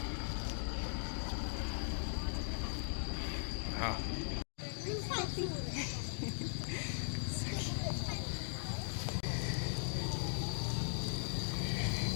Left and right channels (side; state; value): right; silent; digital silence